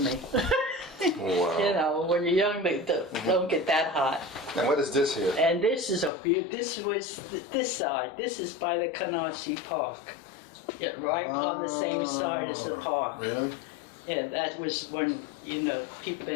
Wow. You know, when you're young, they don't get that hot. And what is this here? And this is this was this side. This is by the Canarsie Park. Yeah, right on the same side as the park. Really? Yeah, that was when, you know, people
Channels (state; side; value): drops out; right; at 6.1 s